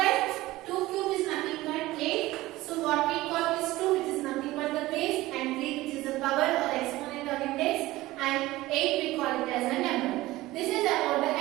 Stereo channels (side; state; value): left; quieter; 18.0 dB